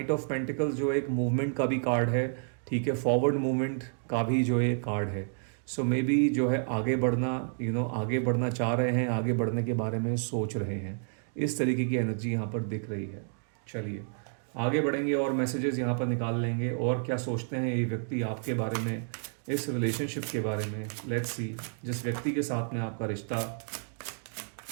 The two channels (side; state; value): left; silent; digital silence